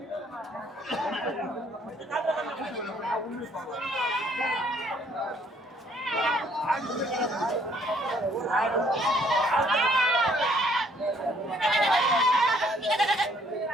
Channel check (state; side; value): normal; both; correlation 0.64